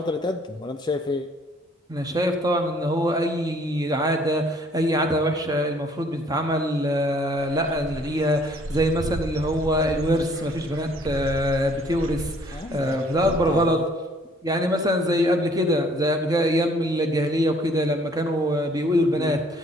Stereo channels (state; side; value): normal; both; correlation 0.60